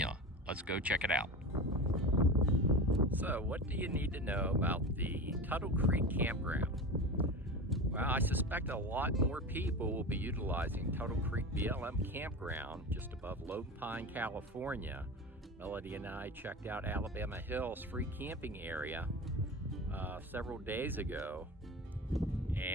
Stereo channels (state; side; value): normal; both; correlation 0.29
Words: Let's go check it out. So, what do you need to know about the Tuttle Creek Campground? Well, I suspect a lot more people will be utilizing Tuttle Creek BLM Campground just above Lone Pine, California. Melody and I checked out Alabama Hills free camping area several days ago,